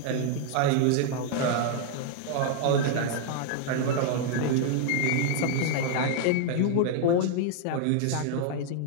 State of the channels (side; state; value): both; different; correlation 0.00